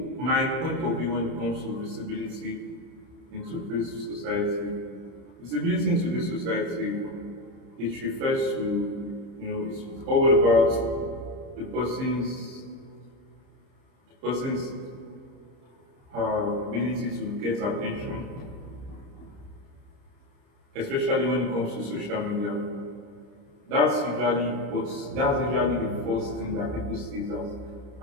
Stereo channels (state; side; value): late; left; 30 ms